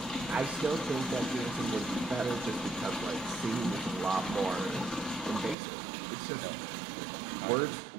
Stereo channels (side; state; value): left; drops out; at 5.6 s